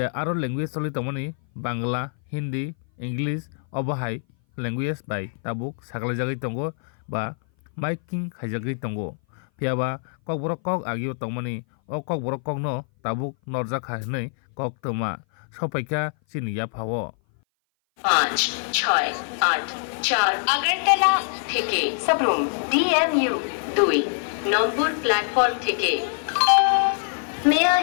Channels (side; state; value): right; silent; 58 dB below the other